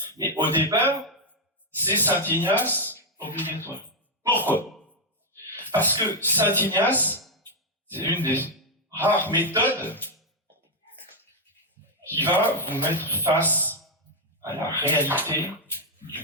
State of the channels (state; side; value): normal; both; correlation 0.01